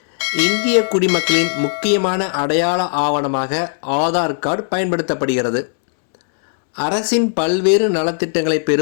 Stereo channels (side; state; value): right; silent; digital silence